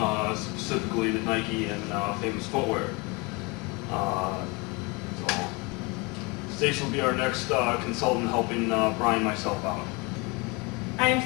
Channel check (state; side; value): quieter; right; 27.8 dB